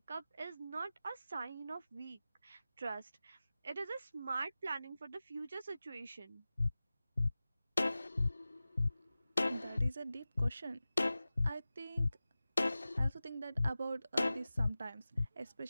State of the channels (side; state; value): both; inverted; correlation -0.96